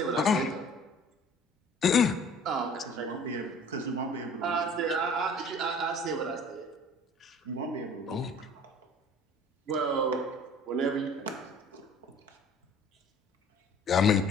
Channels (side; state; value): both; normal; correlation 0.50